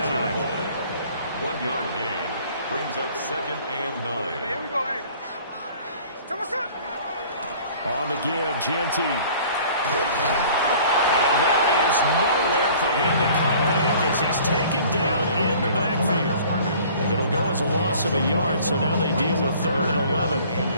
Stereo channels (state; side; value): inverted; both; correlation -0.50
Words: 1 yard gain. brings up 2nd and 9. Hey, here we go, hey. Come on, son. On the give, Genty. And there is nowhere for him to cut back as he's taken down in the backfield. It'll go as a loss of a yard, so now they deal with 3rd and 11.